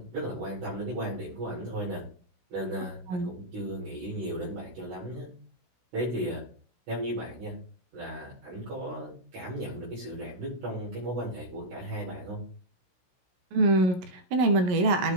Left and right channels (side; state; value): left; late; 16 ms